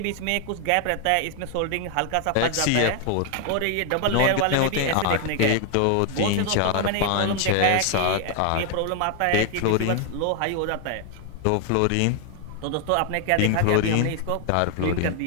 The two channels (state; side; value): different; both; correlation 0.00